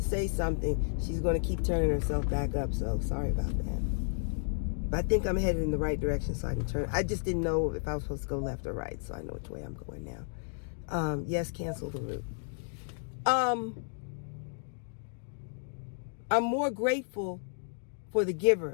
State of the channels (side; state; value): right; silent; digital silence